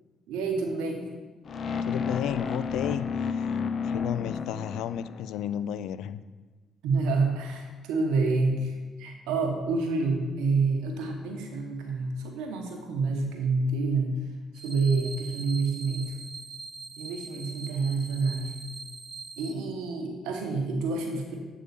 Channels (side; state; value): both; normal; correlation 0.68